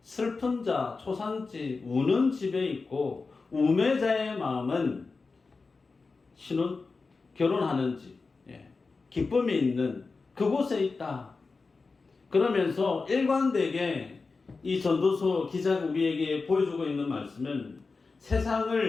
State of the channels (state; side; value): quieter; right; 4.2 dB